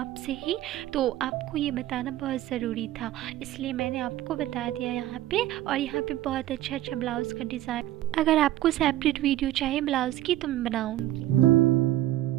ही। तो आपको ये बताना बहुत ज़रूरी था, इसलिए मैंने आपको बता दिया यहाँ पे। और यहाँ पे बहुत अच्छा ब्लाउज़ का डिज़ाइन, अगर आपको सेपरेट वीडियो चाहिए ब्लाउज़ की तो मैं बनाऊँगी।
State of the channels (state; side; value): quieter; left; 14.3 dB